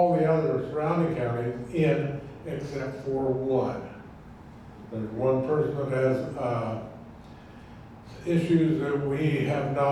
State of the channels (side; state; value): both; identical; correlation 1.00